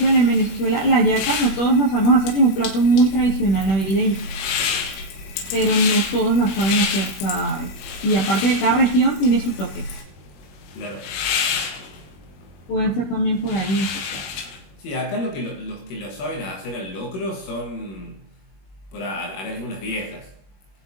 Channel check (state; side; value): late; right; 21 ms